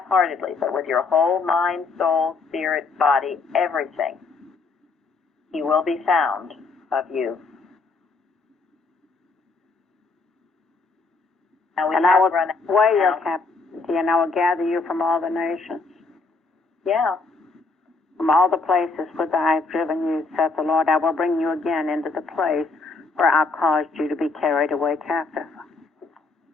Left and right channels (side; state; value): right; quieter; 4.0 dB